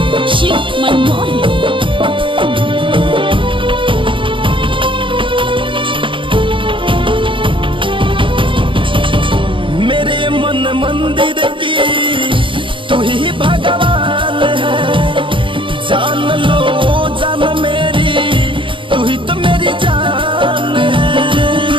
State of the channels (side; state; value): left; late; 0.25 ms